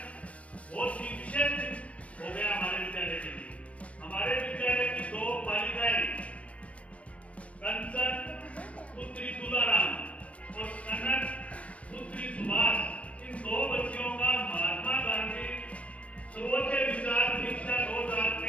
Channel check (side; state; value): right; late; 0.064 ms